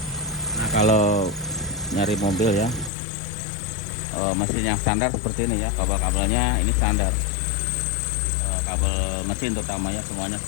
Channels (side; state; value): right; drops out; at 2.9 s